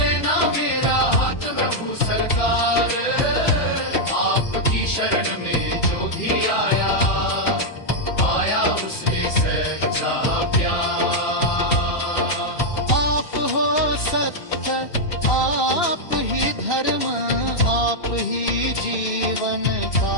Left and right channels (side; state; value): right; late; 2.9 ms